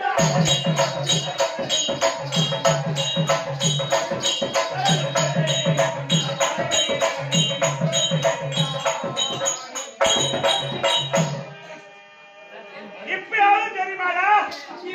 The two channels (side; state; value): both; identical; correlation 1.00